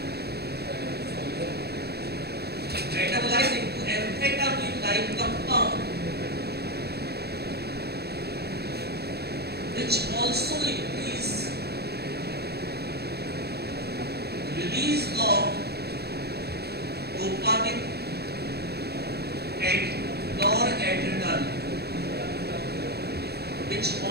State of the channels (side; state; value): left; late; 0.47 ms